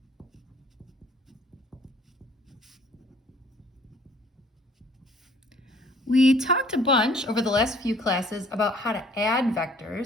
We talked a bunch over the last few classes about how to add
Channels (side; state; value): both; normal; correlation 0.57